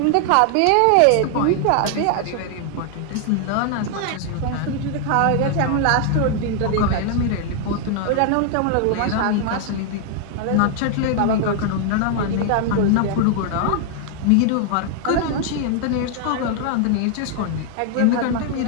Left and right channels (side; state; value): both; different; correlation 0.00